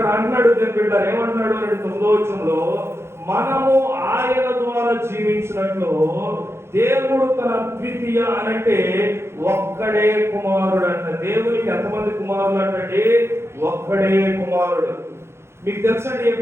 అంటున్నాడు దేవుని బిడ్డ, ఏమంటున్నాడు అంటే 9వ వచనంలో, మనము ఆయన ద్వారా జీవించినట్లు దేవుడు తన ద్వితీయ అనంటే ఒక్కడే కుమారుడు అంట. దేవునికి ఎంతమంది కుమారులు అంటే ఒక్కడే కుమారుడు. మీకు తెలుసండి,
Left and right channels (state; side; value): late; left; 0.12 ms